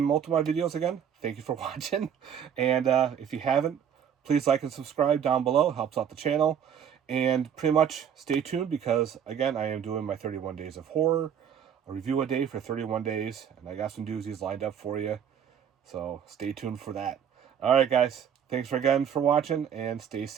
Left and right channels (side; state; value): left; quieter; 8.4 dB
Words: multiple of my videos again, thank you for watching. And if you haven't, please like and subscribe down below. It helps out the channel. And pretty much stay tuned because, again, I am doing my 31 days of horror. A review a day for 31 days. And I got some doozies lined up for you. So stay tuned for that. Alright, guys. Thanks again for watching. And stay